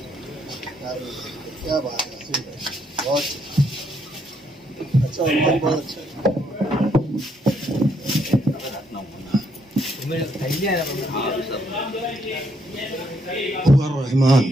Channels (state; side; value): normal; both; correlation 0.73